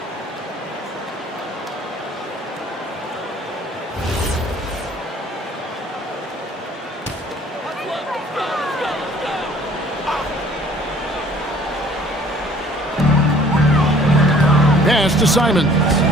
Pass to Simons.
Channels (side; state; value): both; normal; correlation 0.54